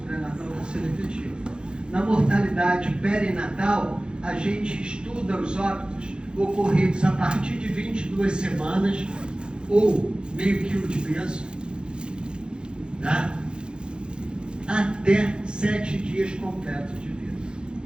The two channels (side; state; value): left; late; 0.050 ms